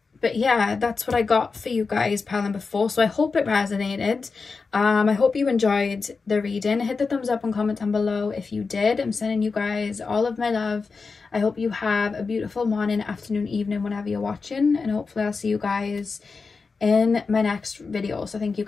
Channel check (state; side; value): quieter; right; 4.6 dB